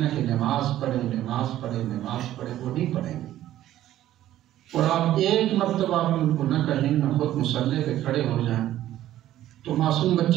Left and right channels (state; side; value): quieter; left; 13.2 dB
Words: کہ نماز پڑھے نماز پڑھے نماز پڑھے، وہ نہیں پڑھیں گے، اور آپ ایک مرتبہ بھی ان کو نہ کہیں، نہ خود مصلی پہ کھڑے ہو جائیں، تو معصوم